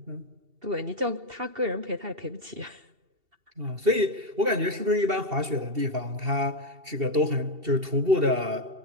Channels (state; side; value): late; left; 2.7 ms